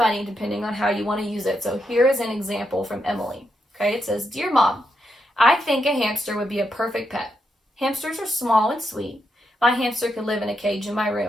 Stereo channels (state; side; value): normal; both; correlation 0.82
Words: depending on how you want to use it. So here is an example from Emily. Okay, it says, "Dear Mom, I think a hamster would be a perfect pet. Hamsters are small and sweet, My hamster could live in a cage in my